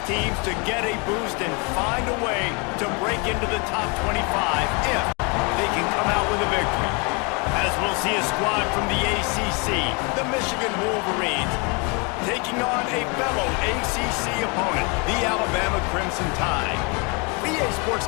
teams to get a boost and find a way to break into the top 25 if they can come out with a victory. As we'll see a squad from the ACC, the Michigan Wolverines, taking on a fellow ACC opponent, the Alabama Crimson Tide. BA Sports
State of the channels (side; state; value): right; quieter; 31.7 dB